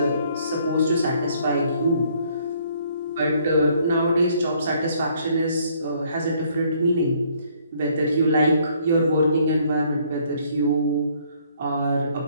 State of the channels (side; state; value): both; inverted; correlation -0.64